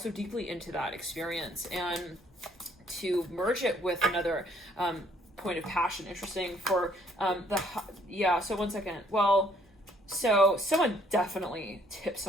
deeply into that experience and to merge it with another point of passion. Interesting for so one second. Well, so someone definitely tipped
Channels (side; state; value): both; normal; correlation 0.63